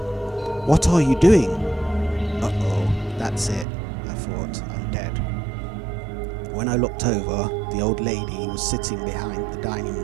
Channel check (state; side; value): drops out; left; at 3.7 s